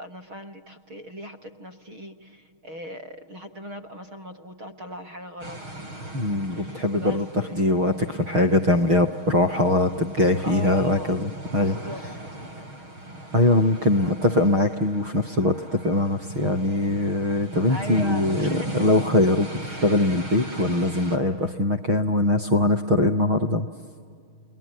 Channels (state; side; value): late; left; 6.4 ms